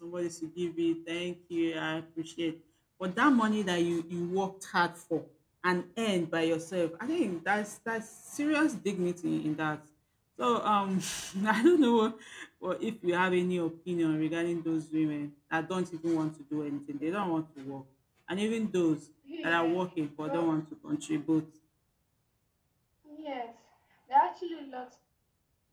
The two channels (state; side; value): identical; both; correlation 1.00